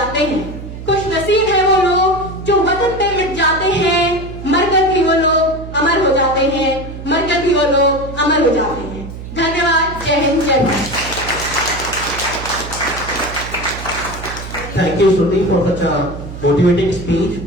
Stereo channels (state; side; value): noise; right; hum, 11 dB below the sound